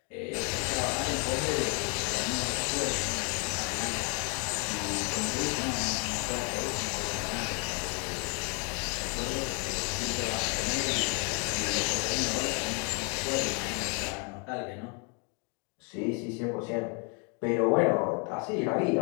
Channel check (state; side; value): quieter; right; 36.8 dB